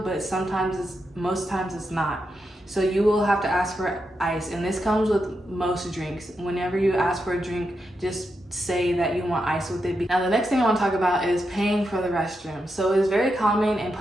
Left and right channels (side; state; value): both; normal; correlation 0.85